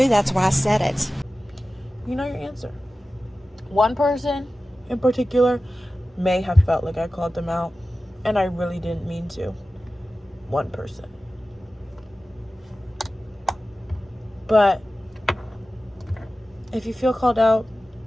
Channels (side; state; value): both; normal; correlation 0.95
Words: That's why I said it. You know your answer. One person in particular may have felt like I called them out, and I really didn't mean to. One person. But if you feel called out,